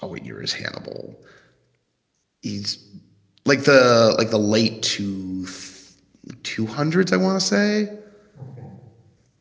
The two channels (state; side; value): identical; both; correlation 1.00